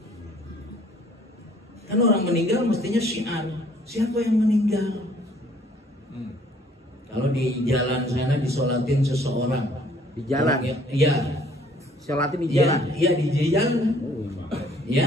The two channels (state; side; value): normal; both; correlation 0.59